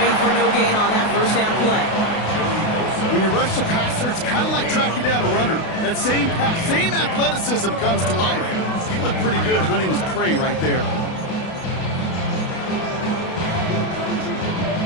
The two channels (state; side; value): late; right; 32 ms